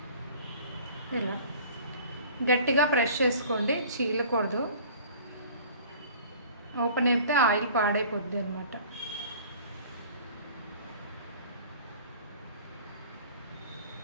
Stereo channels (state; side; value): inverted; both; correlation -0.46